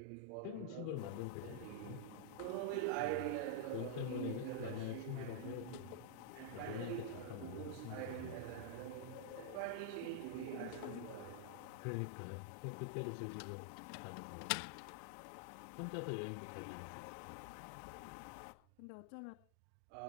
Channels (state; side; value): different; both; correlation -0.01